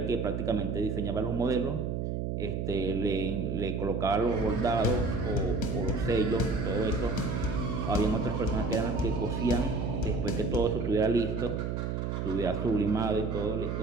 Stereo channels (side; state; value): right; noise; hum, 2 dB below the sound